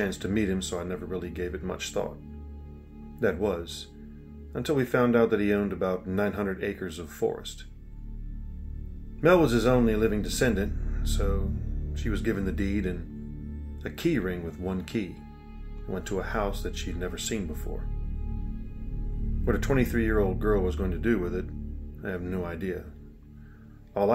to meet him, so I never really gave it much thought. That was, until we found out that he owned about 900 acres of forest. Mel was his only living descendant, so she was given the deed and a key ring with one key and went to a house that she'd never seen before. What a 23-year-old girl was going to do with it, I have no idea. All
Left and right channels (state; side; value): identical; both; correlation 1.00